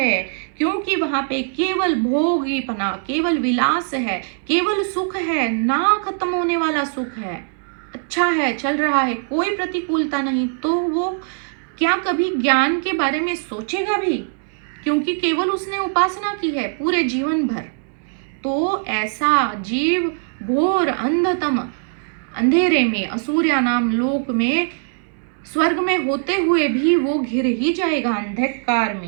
क्योंकि वहां पे केवल भोगीपना, केवल विलास है, केवल सुख है, ना खत्म होने वाला सुख है, अच्छा है, चल रहा है, कोई प्रतिकूलता नहीं। तो वो क्या कभी ज्ञान के बारे में सोचेगा भी? क्योंकि केवल उसने उपासना की है पूरे जीवन भर। तो ऐसा जीव घोर अंधतम अंधेरे में, असुर्या नाम लोक में, स्वर्ग में होते हुए भी वो घिर ही जाएगा अंधकार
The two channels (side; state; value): left; silent; 62 dB below the other